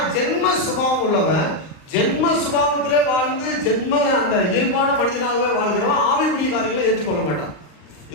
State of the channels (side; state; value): right; late; 39 ms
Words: ஜென்ம சுபாவம் உள்ளவன் ஜென்ம சுபாவத்திலே வாழ்ந்து அந்த இயல்பான மனிதனாகவே வாழ்கிறவன் ஆவிக்குரிய காரியங்களை ஏற்றுக்கொள்ள மாட்டான்.